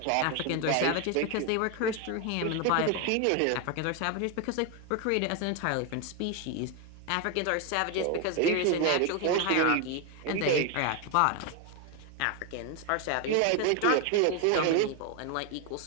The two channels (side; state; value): both; different; correlation 0.01